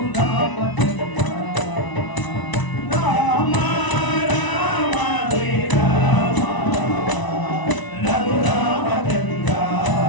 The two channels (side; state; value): right; late; 1.0 ms